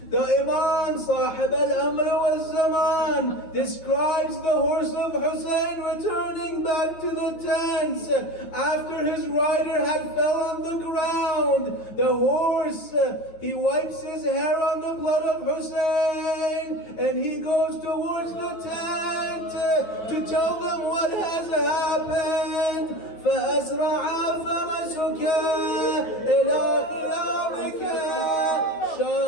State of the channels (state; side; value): late; right; 9.2 ms